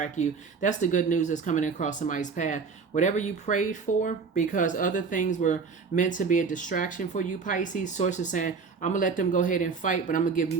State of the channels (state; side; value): quieter; left; 5.1 dB